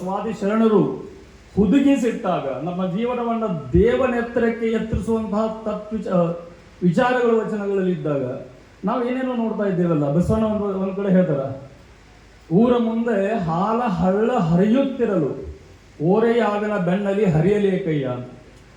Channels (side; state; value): both; identical; correlation 1.00